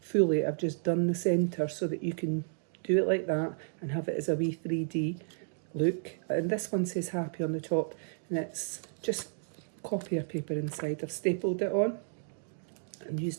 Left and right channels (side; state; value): left; silent; digital silence